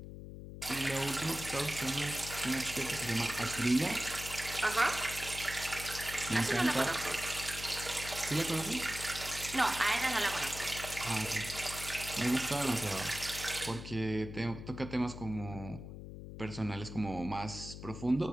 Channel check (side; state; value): left; noise; hum, 11 dB below the sound